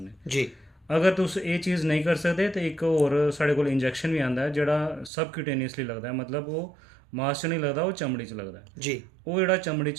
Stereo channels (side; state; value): left; drops out; at 5.1 s